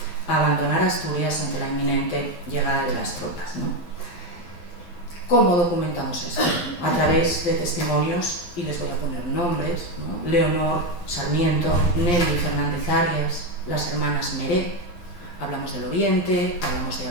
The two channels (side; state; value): right; late; 12 ms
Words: abandonar Asturias ante la inminente llegada de las tropas, ¿no? ¿Cómo documentamos esto? A través de testimonios, y les voy a poner nombres, ¿no? Leonor Sarmiento, Nelly Fernández Arias, las hermanas Meré, hablamos del Oriente, hablamos de